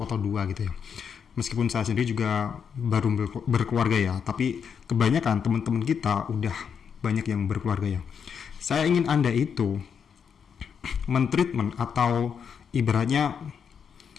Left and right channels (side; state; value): right; quieter; 7.0 dB